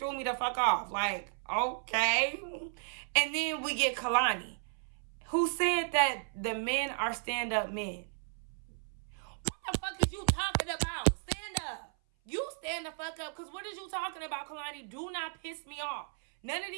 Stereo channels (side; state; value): left; silent; 55 dB below the other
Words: me the fuck off. Like, okay. And then we get Kalani, who said that the men are stand-up men. What the fuck is you talking about? Stand up. You stand the fuck up, because what is you talking about, Kalani? Do not piss me off. None of